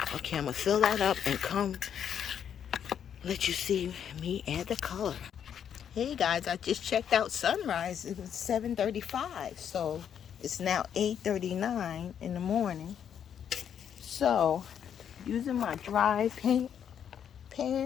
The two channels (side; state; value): right; quieter; 8.6 dB